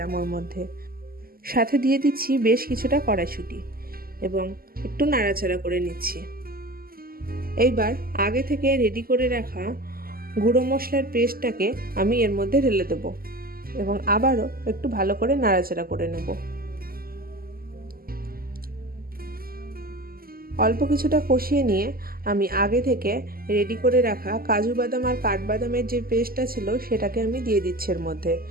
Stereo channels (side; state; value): left; late; 0.43 ms